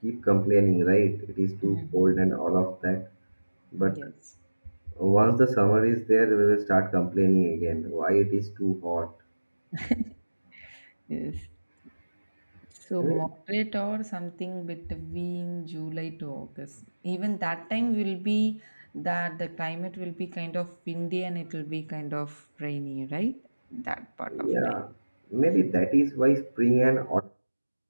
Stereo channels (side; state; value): both; inverted; correlation -1.00